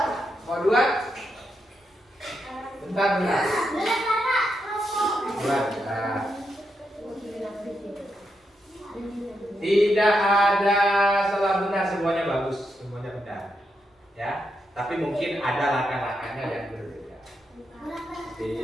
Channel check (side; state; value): both; normal; correlation 0.83